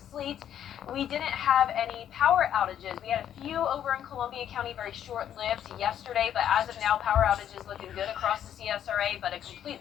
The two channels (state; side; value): quieter; right; 10.1 dB